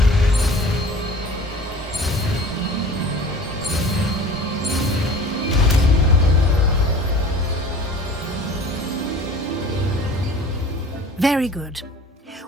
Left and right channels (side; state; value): both; normal; correlation 0.44